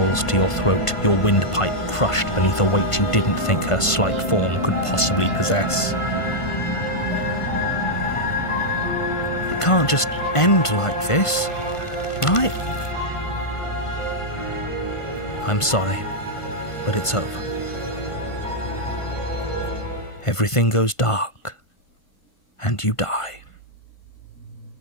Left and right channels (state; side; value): late; right; 1.5 ms